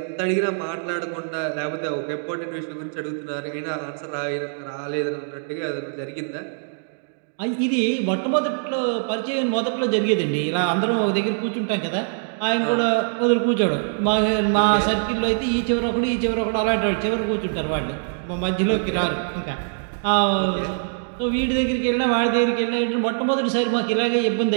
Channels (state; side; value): silent; left; digital silence